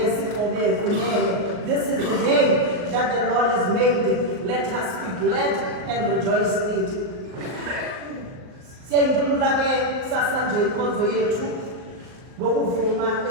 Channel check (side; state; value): left; late; 38 ms